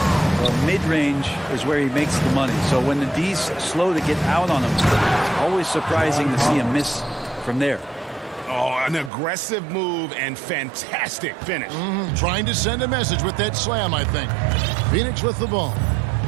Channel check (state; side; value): drops out; left; at 9.1 s